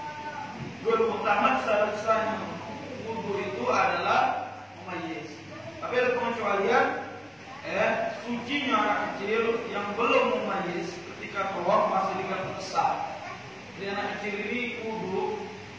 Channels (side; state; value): both; identical; correlation 1.00